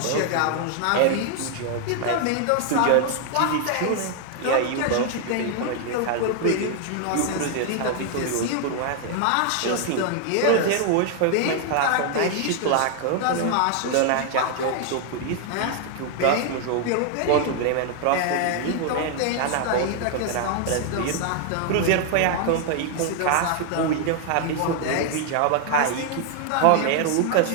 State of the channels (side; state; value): both; different; correlation 0.00